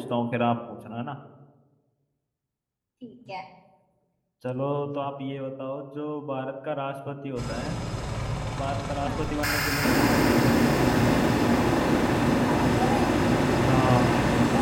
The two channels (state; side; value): identical; both; correlation 1.00